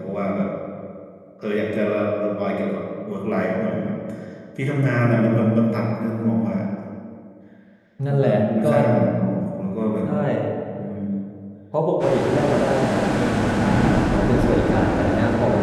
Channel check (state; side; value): identical; both; correlation 1.00